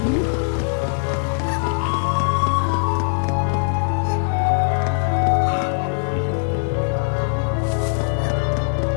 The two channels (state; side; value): silent; right; digital silence